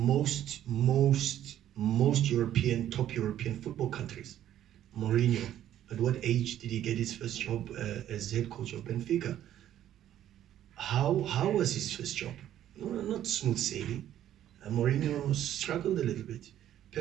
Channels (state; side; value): quieter; left; 11.6 dB